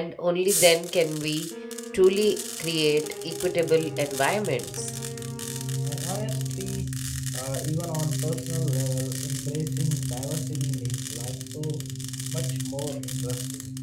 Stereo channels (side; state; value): both; identical; correlation 1.00